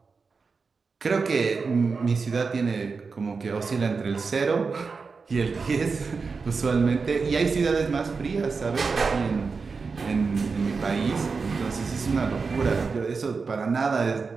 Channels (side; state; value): left; quieter; 4.8 dB